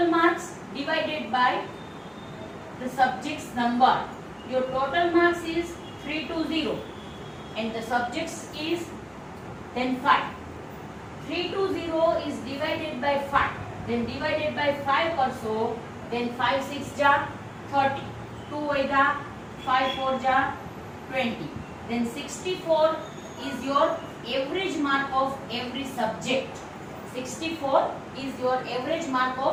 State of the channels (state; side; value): identical; both; correlation 1.00